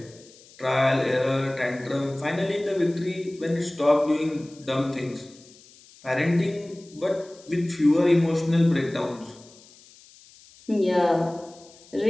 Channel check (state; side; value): noise; left; hiss, 25 dB below the sound